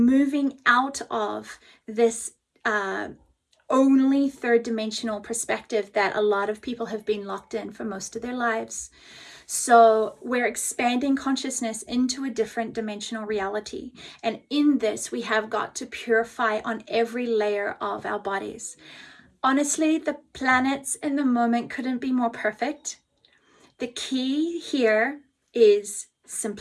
out of this only third dimensional perspective that a lot of people have been locked in for most of their lives. So we're expanding consciousness into a different dimensional reality. And in this, we have got to purify on every layer of our bodies. Honestly, the planets in the moment couldn't be more perfect. The key here is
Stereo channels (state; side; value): identical; both; correlation 1.00